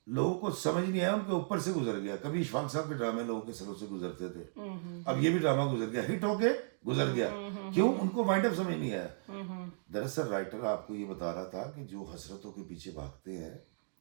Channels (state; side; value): silent; left; digital silence